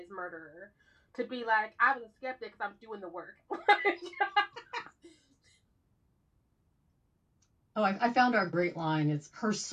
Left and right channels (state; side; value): identical; both; correlation 1.00